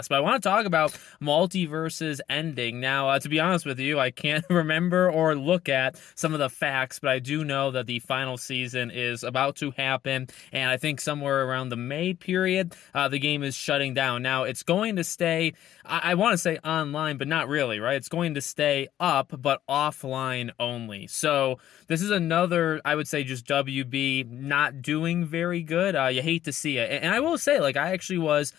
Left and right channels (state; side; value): quieter; right; 12.1 dB